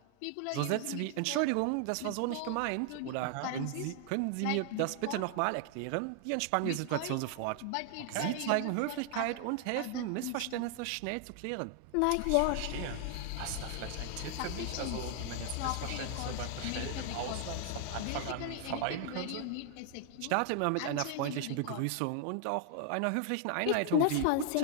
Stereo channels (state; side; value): different; both; correlation 0.00